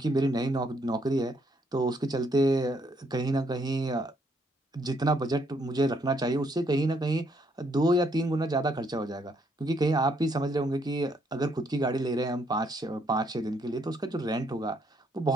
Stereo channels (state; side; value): normal; both; correlation 0.71